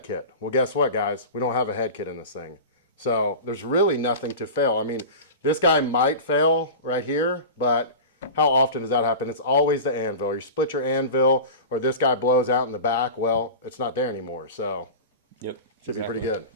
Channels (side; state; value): both; inverted; correlation -0.31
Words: kit. Well, guess what, guys? We don't have a head kit in this thing. So there's really nothing to fail. I mean, this guy might fail right here, but how often does that happen? It's always the anvil. You split your anvil, or this guy blows out in the back. Well, it's not there anymore. So should be pretty good.